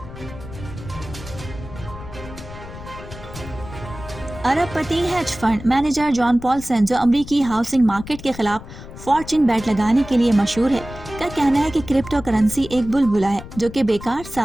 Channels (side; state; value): left; noise; rumble, 14 dB below the sound